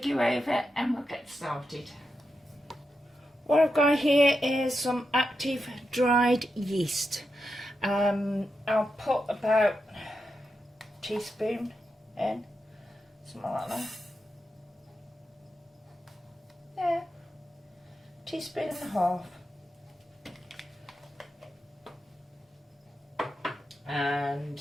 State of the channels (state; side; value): normal; both; correlation 0.87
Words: you over and we'll get started. What I've got here is some active dried yeast. I'll put about a teaspoon in, something like that. Yeah, teaspoon and a half. And